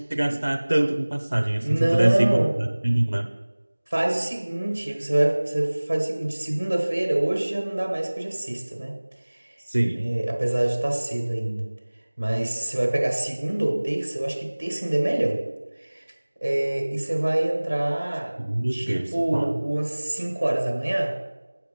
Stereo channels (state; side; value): inverted; both; correlation -1.00